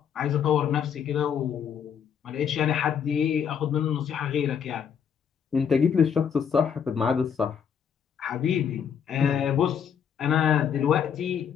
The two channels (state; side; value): quieter; right; 7.7 dB